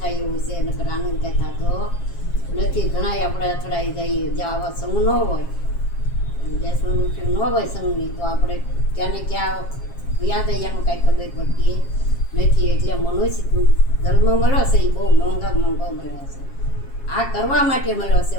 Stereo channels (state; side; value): late; right; 7.4 ms